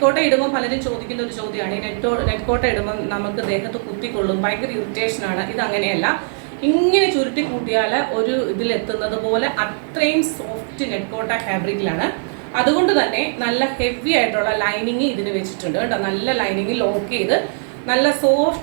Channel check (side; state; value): left; silent; digital silence